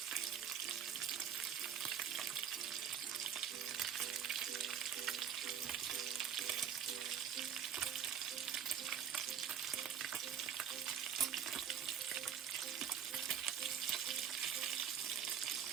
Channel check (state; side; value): quieter; left; 8.5 dB